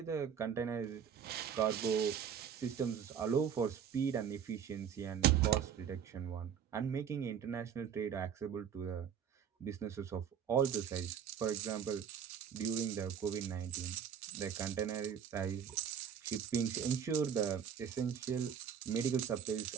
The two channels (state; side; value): quieter; left; 8.0 dB